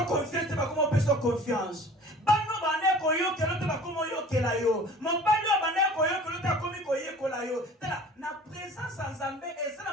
confiance ba como peso confiance bano bane ko yo kelo te ba como yo kela yo mobali bane ko yo kelo te komi ko ye kola yo tala na présence nzambe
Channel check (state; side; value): normal; both; correlation 0.45